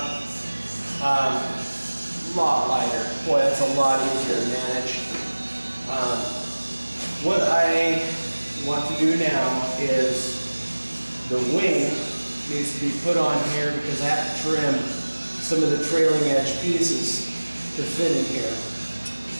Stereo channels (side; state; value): both; inverted; correlation -1.00